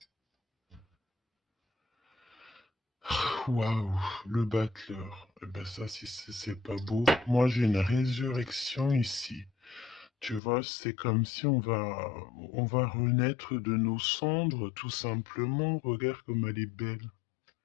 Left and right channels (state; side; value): drops out; right; at 10.4 s